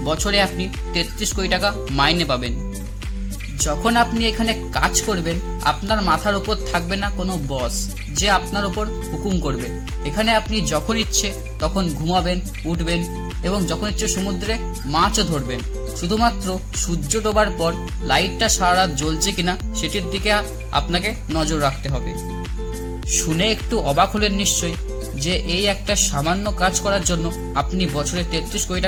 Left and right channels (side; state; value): both; identical; correlation 1.00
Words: বছরে আপনি 33 কোটি টাকা মাইনে পাবেন। যখন আপনি এখানে কাজ করবেন, আপনার মাথার উপর থাকবে না কোনো বস যে আপনার উপর হুকুম করবে। এখানে আপনি যখন ইচ্ছে তখন ঘুমাবেন, উঠবেন এবং যখন ইচ্ছে সমুদ্রে মাছও ধরবেন। শুধুমাত্র সূর্য ডোবার পর লাইটটা সারা রাত জ্বলছে কিনা সেটির দিকে আপনাকে নজর রাখতে হবে। শুনে একটু অবাক হলেন নিশ্চয়ই যে এই একটা সামান্য কাজ করার জন্য আপনি বছরে 33 কোটি